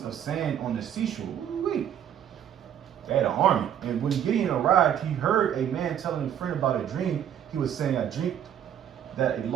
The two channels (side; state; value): left; quieter; 9.8 dB